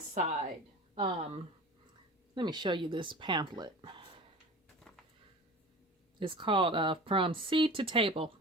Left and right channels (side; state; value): both; normal; correlation 0.37